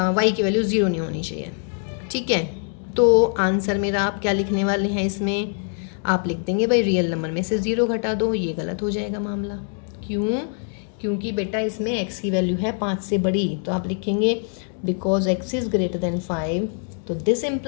y की वैल्यू 0 नहीं होनी चाहिए, ठीक है, तो आंसर मेरा आप क्या लिखने वाले हैं, इसमें आप लिख देंगे भाई रियल नंबर में से 0 घटा दो। ये गलत हो जाएगा मामला, क्यों, क्योंकि बेटा इसमें x की वैल्यू है 5 से बड़ी, तो आप लिखेंगे because x is greater than 5, तो this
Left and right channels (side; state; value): right; silent; 55 dB below the other